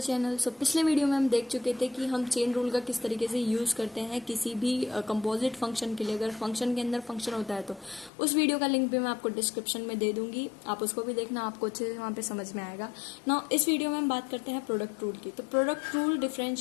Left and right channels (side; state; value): right; drops out; at 8.1 s